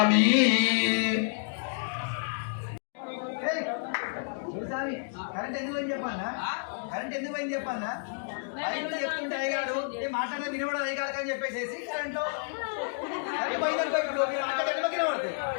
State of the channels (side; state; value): right; silent; digital silence